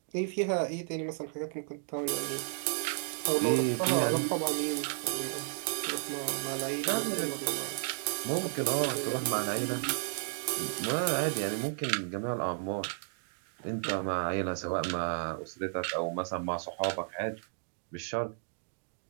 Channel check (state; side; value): silent; left; digital silence